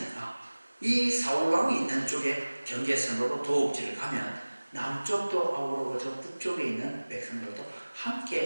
이 사울왕이 있는 쪽에 경계선으로 도읍지를 가면 남쪽도 아우르고 저 북쪽에 있는 백성들도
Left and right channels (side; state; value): both; inverted; correlation -1.00